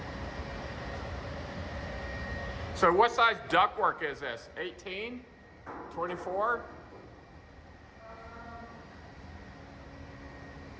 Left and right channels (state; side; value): identical; both; correlation 1.00